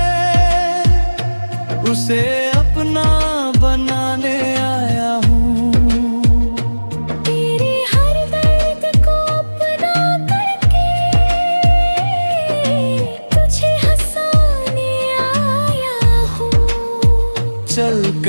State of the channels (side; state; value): both; inverted; correlation -1.00